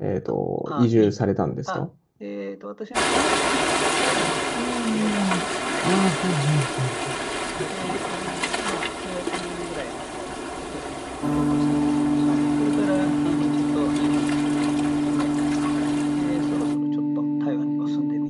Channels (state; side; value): identical; both; correlation 1.00